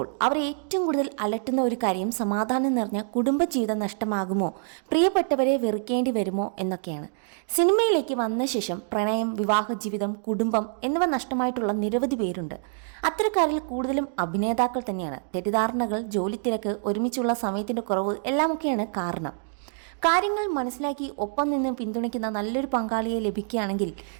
അവർ ഏറ്റവും കൂടുതൽ അലട്ടുന്ന ഒരു കാര്യം സമാധാനം നിറഞ്ഞ കുടുംബജീവിതം നഷ്ടമാകുമോ, പ്രിയപ്പെട്ടവരെ വെറുക്കേണ്ടി വരുമോ എന്നൊക്കെയാണ്. സിനിമയിലേക്ക് വന്ന ശേഷം പ്രണയം, വിവാഹ ജീവിതം, കുടുംബം എന്നിവ നഷ്ടമായിട്ടുള്ള നിരവധി പേരുണ്ട്. അത്തരക്കാരിൽ കൂടുതലും അഭിനേതാക്കൾ തന്നെയാണ്. തെറ്റിദ്ധാരണകൾ, ജോലിത്തിരക്ക്, ഒരുമിച്ചുള്ള സമയത്തിൻ്റെ കുറവ് എല്ലാമൊക്കെയാണ് കാരണം. കാര്യങ്ങൾ മനസ്സിലാക്കി ഒപ്പം നിന്ന് പിന്തുണയ്ക്കുന്ന നല്ലൊരു പങ്കാളിയെ ലഭിക്കുകയാണെങ്കിൽ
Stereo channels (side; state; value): left; silent; digital silence